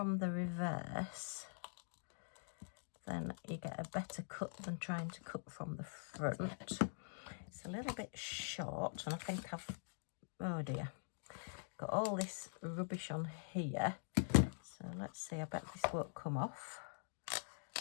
the reverse, then you get a better cut than trying to cut from the front. It's a little bit short, and I think I've, oh dear, got all this rubbish on here. So let's see, I bet this won't come off.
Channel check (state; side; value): silent; right; digital silence